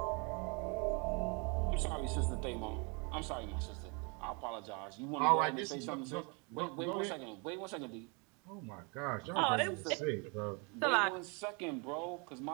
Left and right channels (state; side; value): quieter; left; 32.5 dB